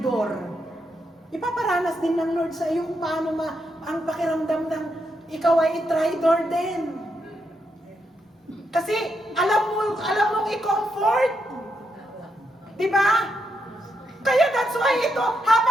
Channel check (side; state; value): both; normal; correlation 0.82